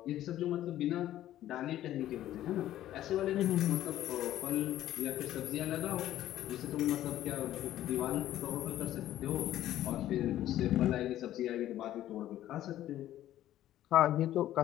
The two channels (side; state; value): right; quieter; 13.1 dB